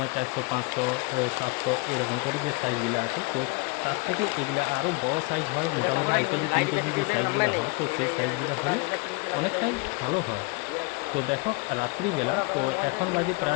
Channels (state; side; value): quieter; right; 27.6 dB